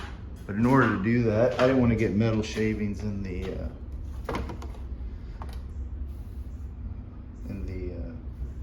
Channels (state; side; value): identical; both; correlation 1.00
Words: in order to do that, I didn't want to get metal shavings in the